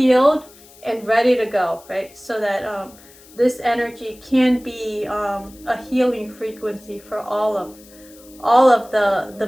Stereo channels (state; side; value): noise; left; hiss, 24 dB below the sound